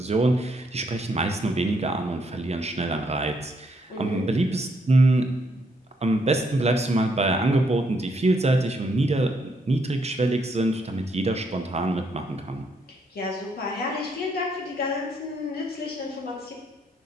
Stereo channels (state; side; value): normal; both; correlation 0.73